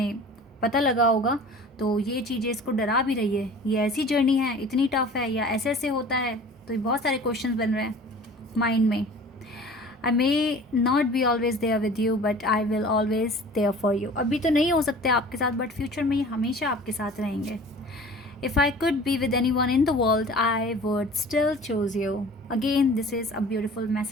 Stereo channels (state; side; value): normal; both; correlation 0.44